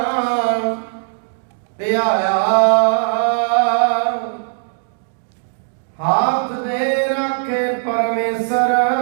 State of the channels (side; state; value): left; silent; digital silence